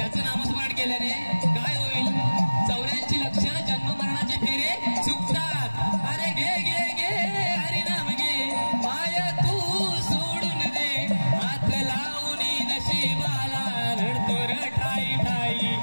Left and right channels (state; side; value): inverted; both; correlation -1.00